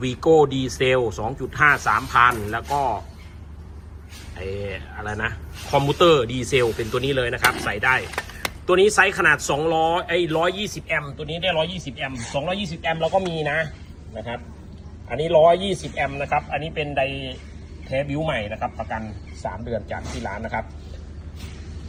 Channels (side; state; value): both; identical; correlation 1.00